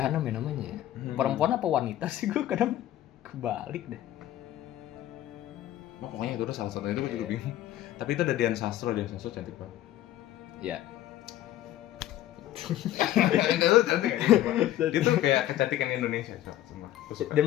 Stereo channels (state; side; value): quieter; right; 13.3 dB